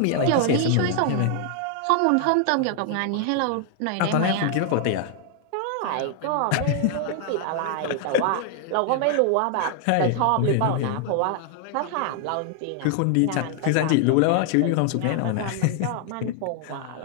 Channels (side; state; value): both; different; correlation 0.00